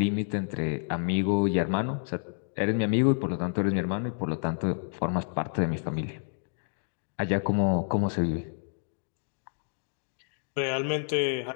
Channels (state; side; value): silent; right; 58 dB below the other